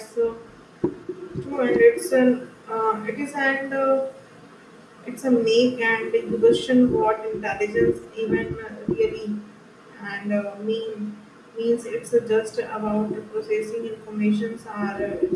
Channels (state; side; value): identical; both; correlation 1.00